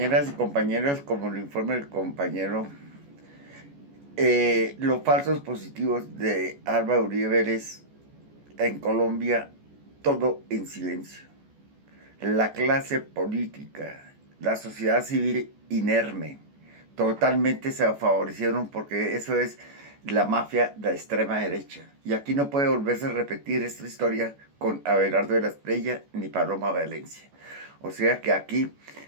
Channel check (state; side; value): late; left; 14 ms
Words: y compañeros, como lo informa el compañero, los falsos positivos de Álvaro Uribe Vélez en Colombia, todo en silencio. La clase política, la sociedad civil inerme, totalmente se favorecieron porque eso es la mafia de la extrema derecha. Y aquí no puede volverse a repetir esta historia con Abelardo de la Espriella ni Paloma Valencia. O sea que aquí